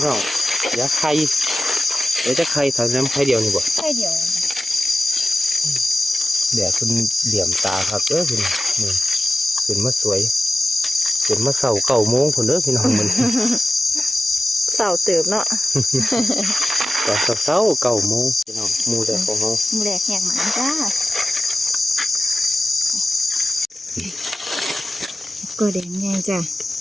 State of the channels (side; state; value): both; normal; correlation 0.93